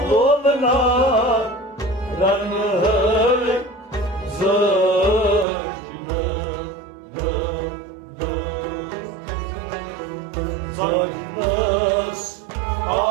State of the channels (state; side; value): drops out; left; at 5.5 s